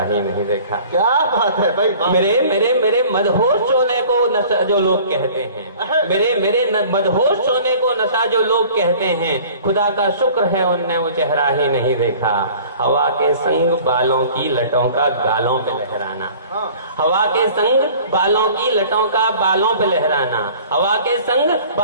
नहीं देखा। क्या बात है भाई, मेरे मदहोश होने को नशा जो लोग कहते हैं, मेरे मदहोश होने को नशा जो लोग कहते हैं, खुदा का शुक्र है उनने वो चेहरा ही नहीं देखा। हवा के संग बालों की लटों का गालों पे लहराना, हवा के संग बालों की लटों का बालों पे लहराना, हवा के संग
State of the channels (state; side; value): inverted; both; correlation -0.47